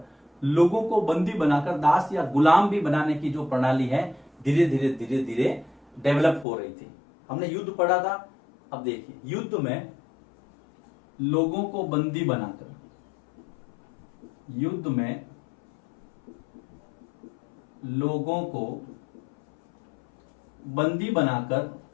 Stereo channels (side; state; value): right; drops out; at 6.5 s